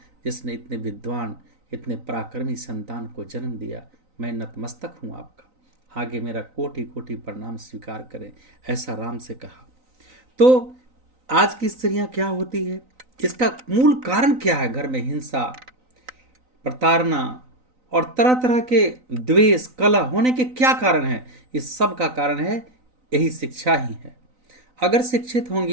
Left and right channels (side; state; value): left; late; 3.9 ms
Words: जिसने इतने विद्वान, इतने पराक्रमी संतान को जन्म दिया। मैं नतमस्तक हूँ आपका, आगे मेरा कोटि कोटि प्रणाम स्वीकार करें, ऐसा राम से कहा। तो आज की स्त्रियां क्या होती है, इसका मूल कारण क्या है? घर में हिंसा, प्रताड़ना और तरह तरह के द्वेष, कलह होने के क्या कारण है? इस सब का कारण है यही शिक्षा ही है। अगर शिक्षित